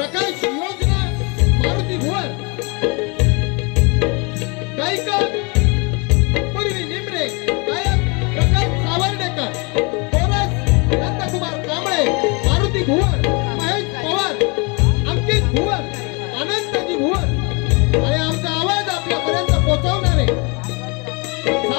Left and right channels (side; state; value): right; quieter; 30.8 dB